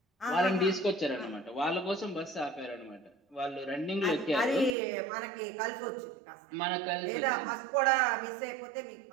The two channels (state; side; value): drops out; left; at 4.8 s